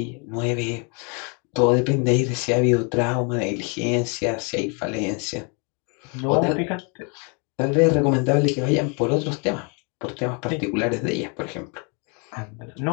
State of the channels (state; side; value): quieter; right; 35.0 dB